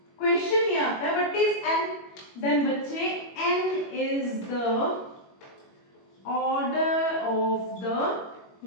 question ये आता है, व्हाट इज n? देन बच्चे n is the order of the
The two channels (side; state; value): right; late; 21 ms